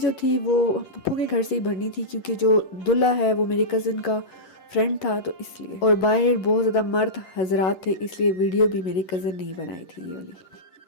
थी वो पप्पू के घर से ही भरनी थी, क्योंकि जो दूल्हा है वो मेरे कज़न का फ्रेंड था तो इसलिए। और बाहर बहुत ज़्यादा मर्द हजरात थे, इसलिए वीडियो भी मेरे कज़न ने ही बनाई थी ये वाली।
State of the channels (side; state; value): right; late; 11 ms